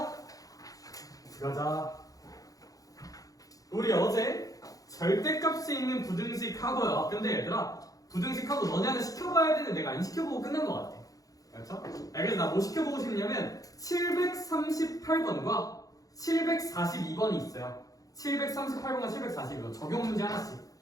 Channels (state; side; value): late; right; 0.17 ms